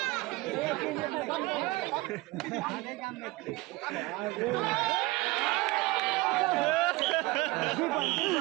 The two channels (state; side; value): quieter; left; 21.1 dB